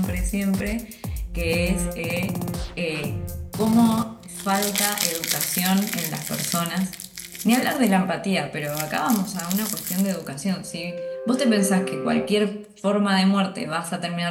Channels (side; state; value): both; identical; correlation 1.00